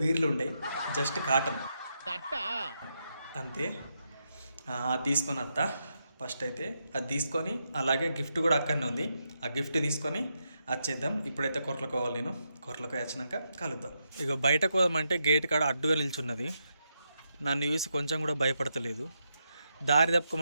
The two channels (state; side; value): inverted; both; correlation -0.83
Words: బీర్లు ఉండయి, జస్ట్ కాటన్ అంతే. అది తీసుకొని వస్తా. ఫస్ట్ అయితే అది తీసుకొని, అలాగే గిఫ్ట్ కూడా అక్కడనే ఉంది. ఆ గిఫ్ట్ తీసుకొని వచ్చేద్దాం. ఇప్పుడైతే కొరలకు పోవాలి. నేను కొరలకు వచ్చినాక కలుద్దాం. ఇక బయటకు పోదామంటే గేట్ కాడ అడ్డుగా నిల్చున్నది. నన్ను చూసి కొంచెం కూడా భయపడతలేదు. దారి